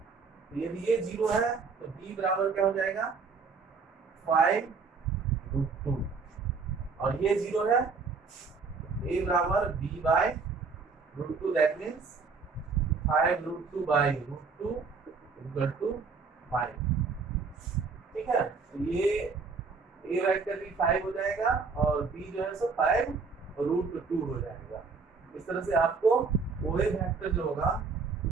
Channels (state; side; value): quieter; left; 4.9 dB